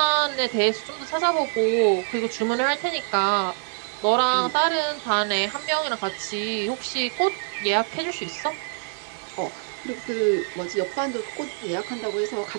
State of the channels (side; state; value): left; silent; digital silence